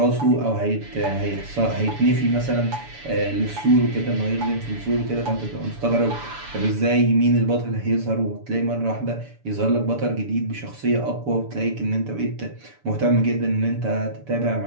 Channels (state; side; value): late; left; 7.0 ms